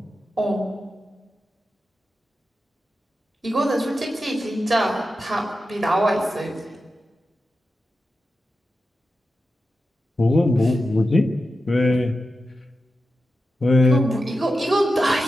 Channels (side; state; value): both; normal; correlation 0.91